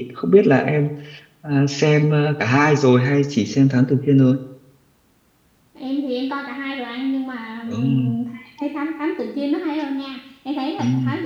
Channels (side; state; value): both; identical; correlation 1.00